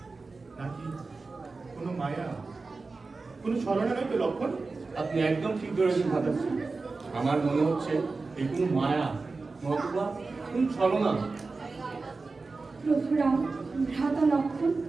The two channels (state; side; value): quieter; left; 3.9 dB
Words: নাকি কোনো মায়া, কোনো ছলনা নয় তো লক্ষণ? আপনি একদম ঠিক ধরেছেন ভাতাশ্রী। আমার মনে হচ্ছে এই কোনো মায়া নতুবা কোন ছলনা। প্রভুরাম, ভ্রাতা লক্ষণ,